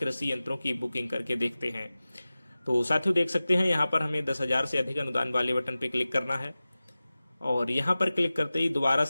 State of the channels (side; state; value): both; inverted; correlation -0.97